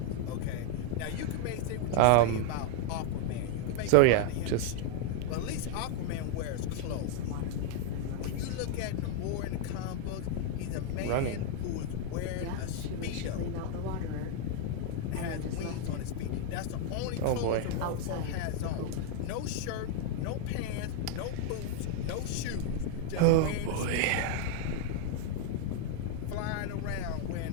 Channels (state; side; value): different; both; correlation 0.00